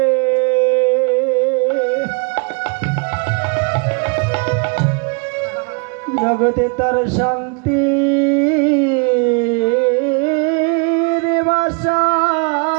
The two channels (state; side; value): quieter; left; 33.7 dB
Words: জগতে তার শান্তি বাসা।